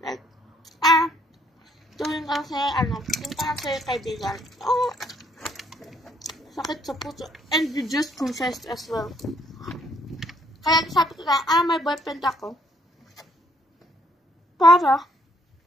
like, tuwing kasi, yung parang sa'yo kaibigan. Sakit sa puso. And you just confessed as well. Kaya sabi ko na, may boyfriend ako. Para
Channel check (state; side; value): normal; both; correlation 0.67